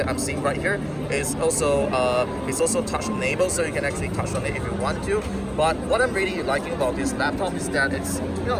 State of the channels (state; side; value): identical; both; correlation 1.00